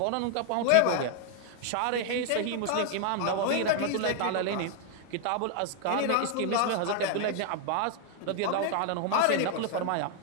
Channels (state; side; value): different; both; correlation 0.00